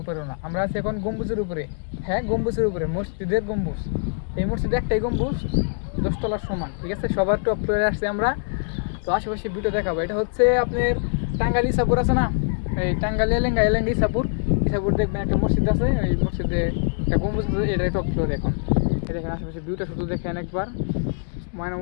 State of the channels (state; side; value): silent; right; digital silence